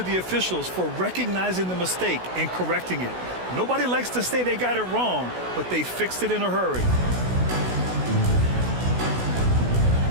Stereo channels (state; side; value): late; left; 16 ms